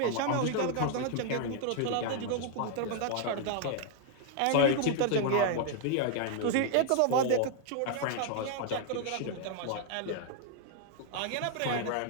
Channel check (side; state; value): both; different; correlation 0.00